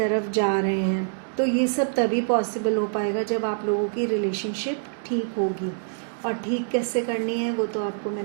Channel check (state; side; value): silent; left; digital silence